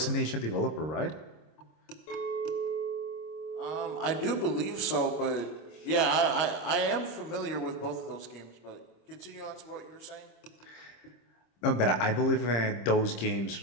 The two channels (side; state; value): right; late; 25 ms